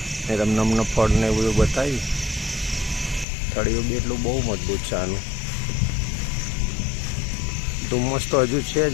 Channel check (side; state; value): right; drops out; at 3.2 s